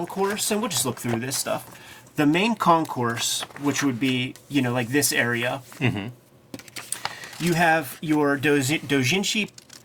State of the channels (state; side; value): identical; both; correlation 1.00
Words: and we'll just look through this stuff. The main concourse, which would be, like this area, you have your doujinshi